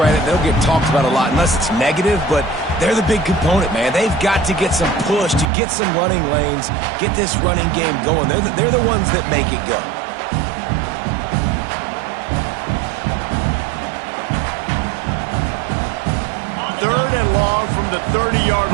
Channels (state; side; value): drops out; left; at 5.5 s